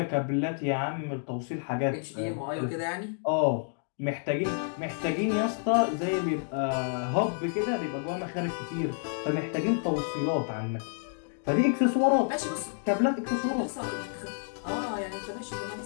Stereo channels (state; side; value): silent; right; 58 dB below the other